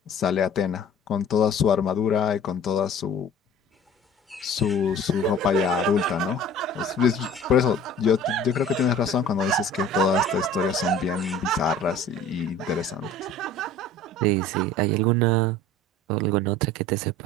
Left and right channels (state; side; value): normal; both; correlation 0.45